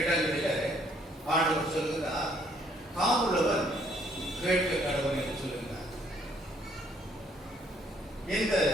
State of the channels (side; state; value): both; normal; correlation 0.65